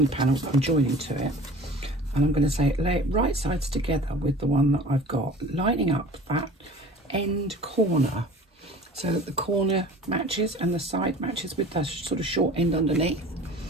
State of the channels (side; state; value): both; normal; correlation 0.43